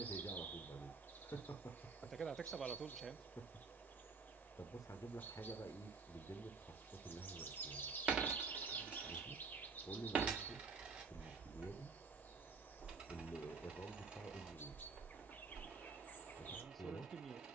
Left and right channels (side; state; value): left; quieter; 4.8 dB